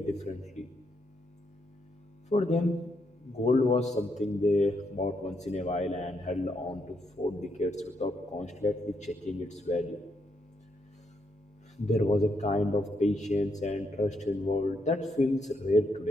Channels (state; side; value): normal; both; correlation 0.78